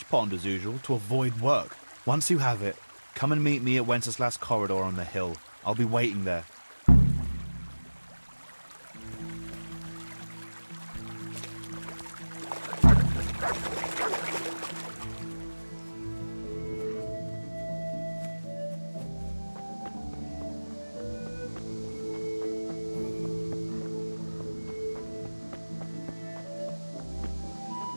pond as usual to avoid work. Once you have it, come and meet me at Wenceslas Corridor on the hill. I'll be waiting there.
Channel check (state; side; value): inverted; both; correlation -1.00